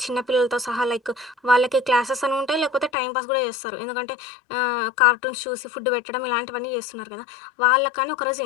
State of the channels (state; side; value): drops out; right; at 2.9 s